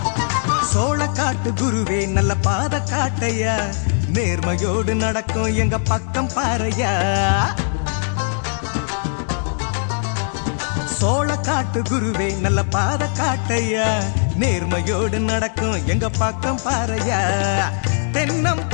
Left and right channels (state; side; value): silent; right; 65 dB below the other